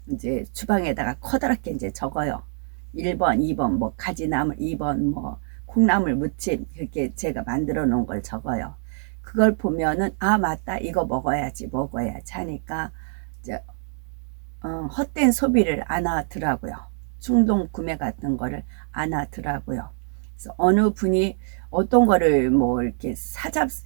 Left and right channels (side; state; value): left; silent; 62 dB below the other